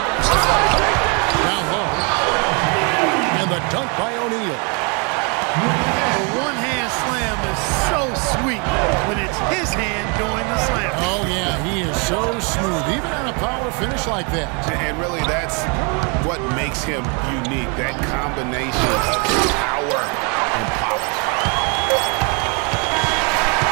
Down low. And And the dunk by O'Neal. The one-hand slam is so sweet when it's his hand doing the slam. Oh, yeah, he is so smooth, even on a power finish like that. And really, that's what makes him unique, that combination of power and polish.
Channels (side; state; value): left; quieter; 34.0 dB